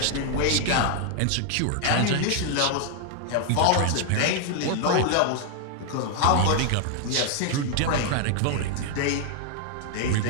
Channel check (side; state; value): both; different; correlation 0.00